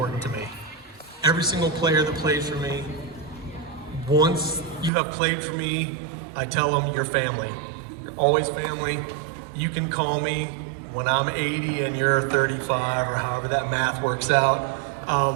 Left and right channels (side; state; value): left; drops out; at 4.9 s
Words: to me. Every single player that plays for me, once you have played for me, I tell them you're family. You're always family. You can call me when I'm 80 and you're 35 or however that math works out,